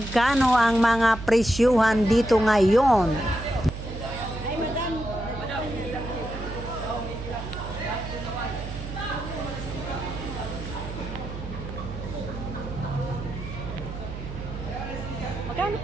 ang mga presyuhan dito ngayon. Magkano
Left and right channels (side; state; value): right; noise; hum, 8 dB below the sound